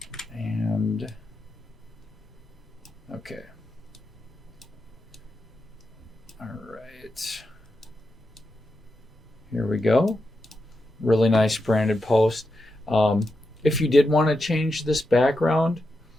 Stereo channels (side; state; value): both; normal; correlation 0.87